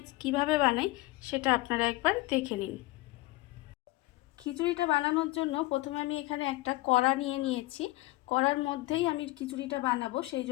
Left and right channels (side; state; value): right; quieter; 20.0 dB